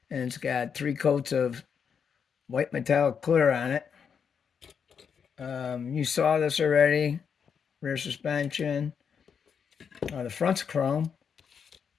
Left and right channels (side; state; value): right; quieter; 6.8 dB